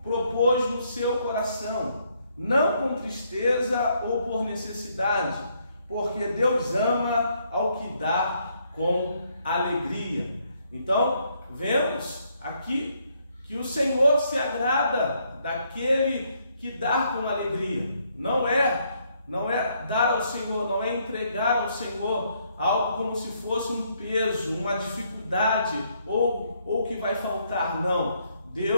propôs no seu coração, não com tristeza ou por necessidade, porque Deus ama ao que dá com alegria. Então, vemos aqui que o Senhor se agrada daquele que dá com alegria. Não é dar ao Senhor, não é entregar ao Senhor algo como se fosse um peso, uma dificuldade ou que vai faltar, não.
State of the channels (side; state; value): both; inverted; correlation -0.72